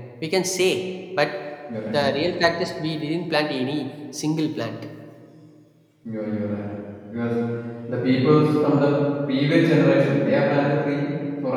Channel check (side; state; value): both; identical; correlation 1.00